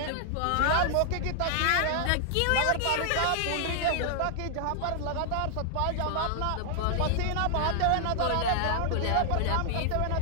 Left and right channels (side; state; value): both; different; correlation 0.00